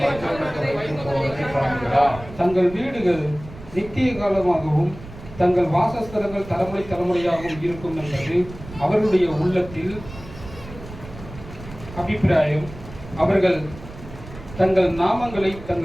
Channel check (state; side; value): noise; right; rumble, 15 dB below the sound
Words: மற்றவர்களுக்கு வைத்து போவதை காண்கிறார். தங்கள் வீடுகள் நித்திய காலமாகவும் தங்கள் வாசஸ்தலங்கள் தலைமுறை தலைமுறையாகவும் இருக்கும் என்பது அவர்களுடைய உள்ளத்தில் அபிப்பிராயம். அவர்கள் தங்கள் நாமங்களை